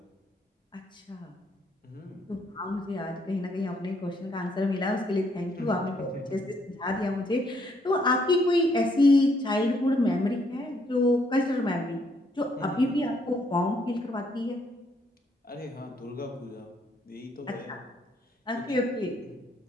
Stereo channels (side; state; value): both; normal; correlation 0.70